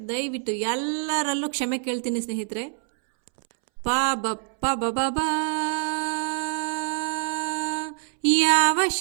ದಯವಿಟ್ಟು ಎಲ್ಲರಲ್ಲೂ ಕ್ಷಮೆ ಕೇಳ್ತೀನಿ ಸ್ನೇಹಿತರೆ. ಪಾ ಬಪ್ಪ ಬಬಾ, ಯಾವ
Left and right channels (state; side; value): silent; left; 61 dB below the other